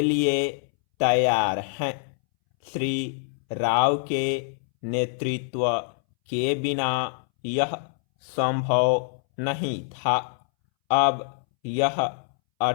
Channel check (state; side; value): silent; right; 62 dB below the other